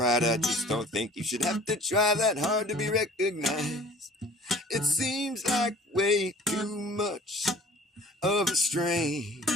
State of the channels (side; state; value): both; normal; correlation 0.48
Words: I just don't think you should have to try that hard to be recognized. It seems like way too much of a strain